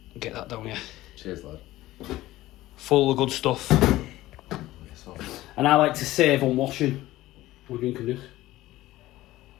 Get that down here. Cheers, lad. Full of good stuff. And I like to save on washing. We're drinking this.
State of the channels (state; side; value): quieter; right; 16.4 dB